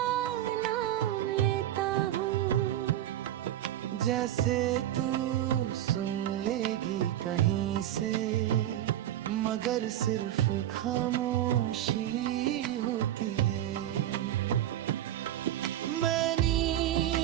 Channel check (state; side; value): quieter; left; 12.3 dB